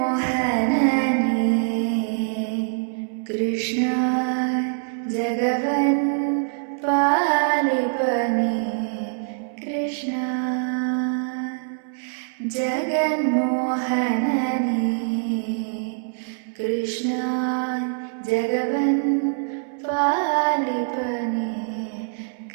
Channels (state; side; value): silent; left; 63 dB below the other